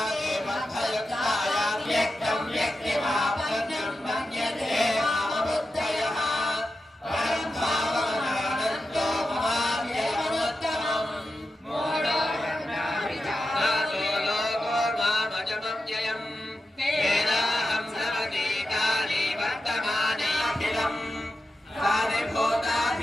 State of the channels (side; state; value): both; normal; correlation 0.91